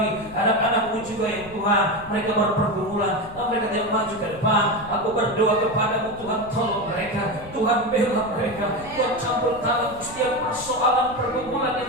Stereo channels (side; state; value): left; noise; rumble, 18 dB below the sound